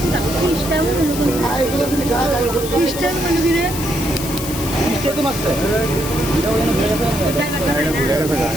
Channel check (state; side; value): noise; left; hiss, 8 dB below the sound